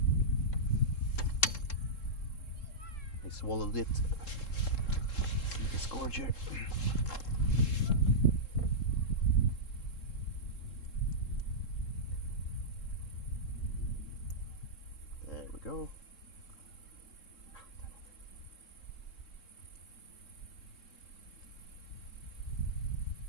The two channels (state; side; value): late; right; 3.7 ms